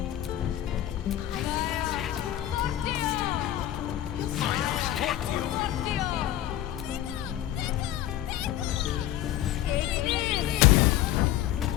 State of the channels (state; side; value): quieter; right; 12.8 dB